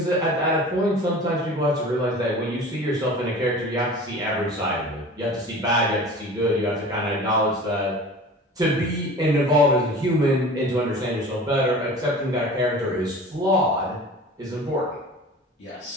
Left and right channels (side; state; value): both; normal; correlation 0.40